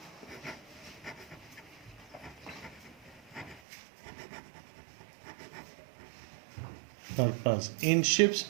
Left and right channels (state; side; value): drops out; left; at 3.6 s